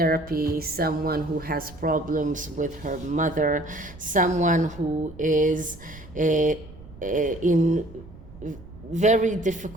someone who has problems with her mother, someone who is in very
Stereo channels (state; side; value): noise; right; rumble, 18 dB below the sound